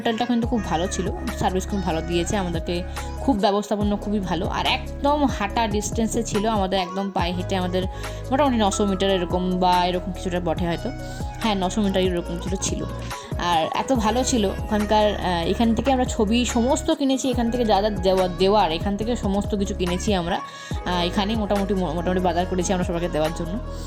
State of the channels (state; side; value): identical; both; correlation 1.00